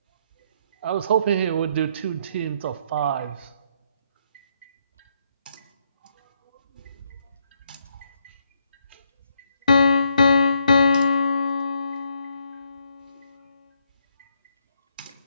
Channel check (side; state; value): both; inverted; correlation -0.74